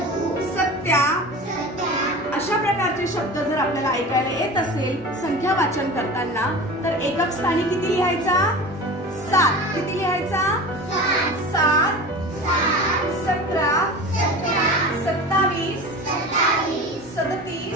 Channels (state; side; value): normal; both; correlation 0.34